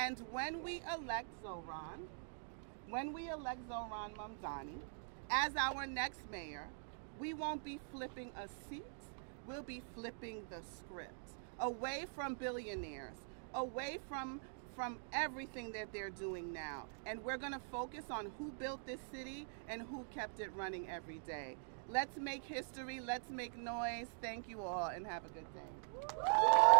when we elect Zohran Mamdani as our next mayor, we won't be flipping a seat, we'll be flipping the script. Away from billionaires, away from everything that they're doing now. And we're gonna focus on who built this city and who kept it running every day. Let's make history, let's make noise. Thank you all and have a good day.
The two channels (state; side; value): silent; left; digital silence